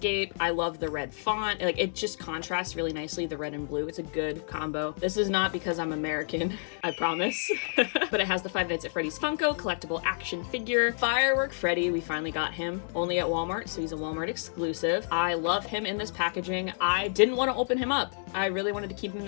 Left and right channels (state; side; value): silent; right; 58 dB below the other